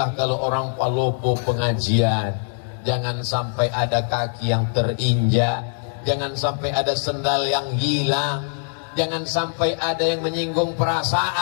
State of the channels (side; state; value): right; silent; digital silence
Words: kalau orang Palopo pengajian. Jangan sampai ada kaki yang terinjak, jangan sampai ada sendal yang hilang, jangan sampai ada yang menyinggung